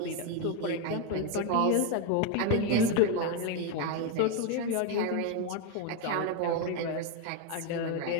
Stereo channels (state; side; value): different; both; correlation 0.02